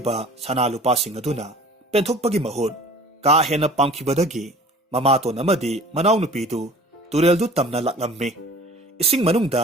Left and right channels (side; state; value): both; normal; correlation 0.46